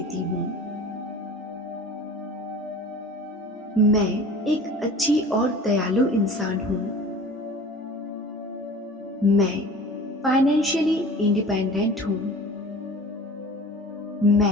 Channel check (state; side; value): normal; both; correlation 0.41